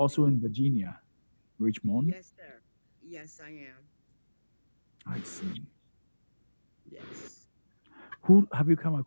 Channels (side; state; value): both; inverted; correlation -1.00